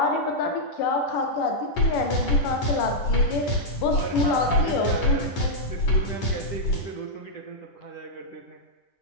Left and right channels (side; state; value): right; late; 10 ms